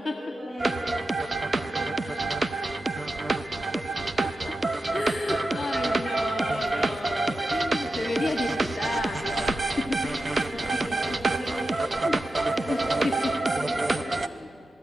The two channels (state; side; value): normal; both; correlation 0.91